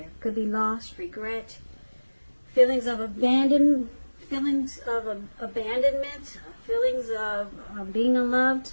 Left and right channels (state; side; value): inverted; both; correlation -1.00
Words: Could be loss, regret, feelings of abandonment, feelings of being